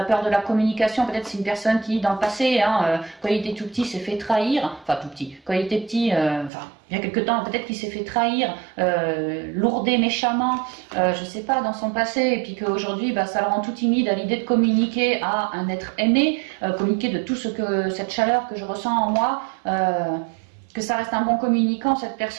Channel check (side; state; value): left; drops out; at 6.5 s